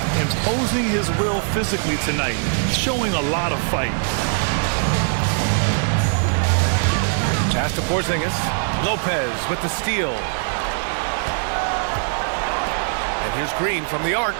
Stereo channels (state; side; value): silent; left; digital silence